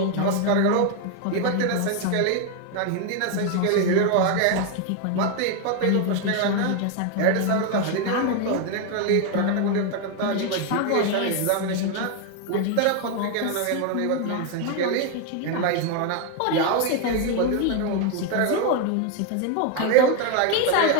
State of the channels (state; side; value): different; both; correlation 0.01